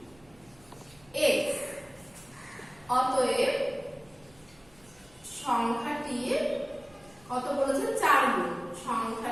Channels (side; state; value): right; noise; rumble, 28 dB below the sound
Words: x। অতএব সংখ্যাটি কত বলেছে 4 গুণ,